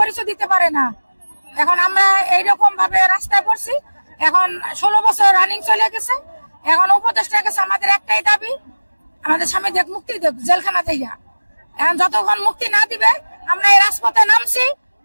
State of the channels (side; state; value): both; inverted; correlation -1.00